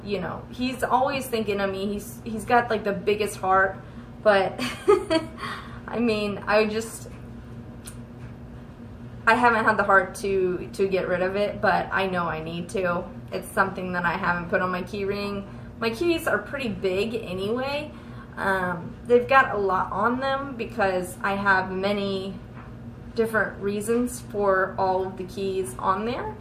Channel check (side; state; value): both; identical; correlation 1.00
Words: you know, he's always thinking of me. He's got like the biggest heart, but I mean, I haven't had the heart to get rid of it, but I know I need to. It's something that I haven't put on my key ring. My keys are pretty big anyway. They've got a lot on them because I have many different reasons for all of the keys on there